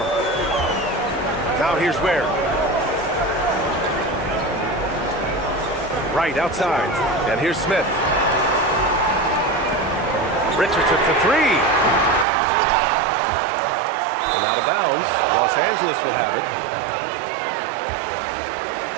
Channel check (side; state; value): left; drops out; at 12.2 s